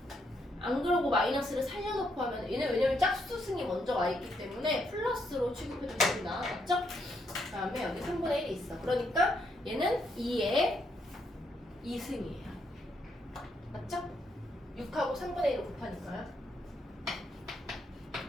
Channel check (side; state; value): both; normal; correlation 0.76